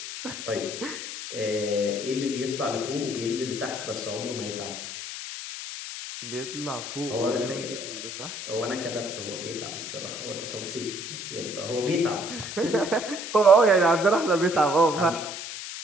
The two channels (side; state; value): left; noise; hiss, 8 dB below the sound